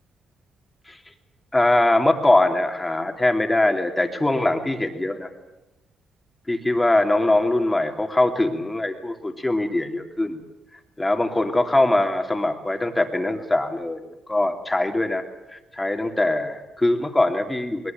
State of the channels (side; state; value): both; normal; correlation 0.98